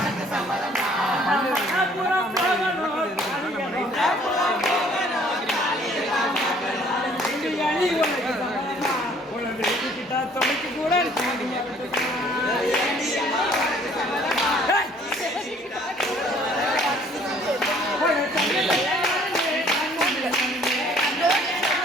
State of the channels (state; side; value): normal; both; correlation 0.58